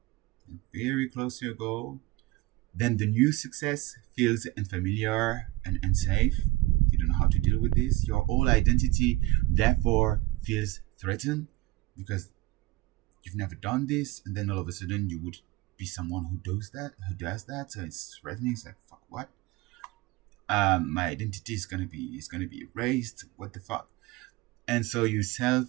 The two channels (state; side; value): quieter; left; 19.9 dB